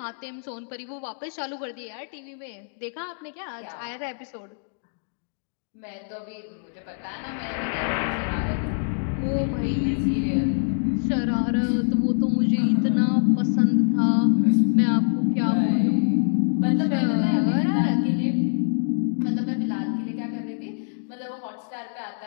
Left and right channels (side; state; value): right; silent; digital silence